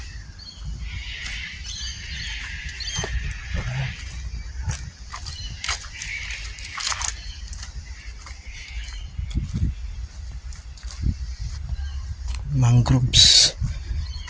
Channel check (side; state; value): both; identical; correlation 1.00